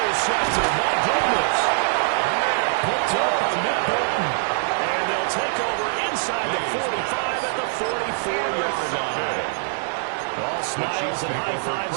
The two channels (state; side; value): silent; left; digital silence